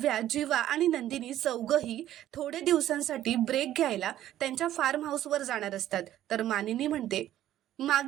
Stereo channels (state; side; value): quieter; left; 12.6 dB